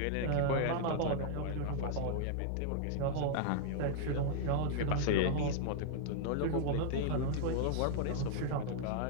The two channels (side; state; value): both; different; correlation -0.01